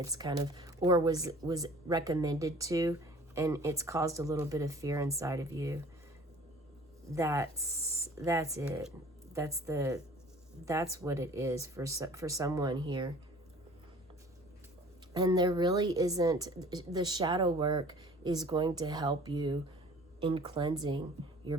kind of, or was recommended to, and it's caused a little bit of fear inside of you. That's it. That's what it is for someone here. And there really isn't, the shadow work is going to help you in cleansing your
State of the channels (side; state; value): both; normal; correlation 0.48